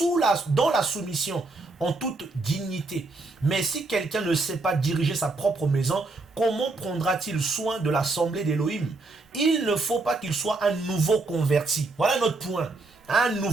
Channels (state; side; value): quieter; left; 3.3 dB